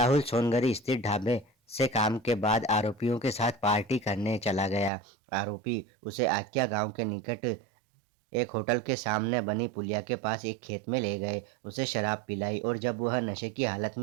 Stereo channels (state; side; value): drops out; left; at 4.9 s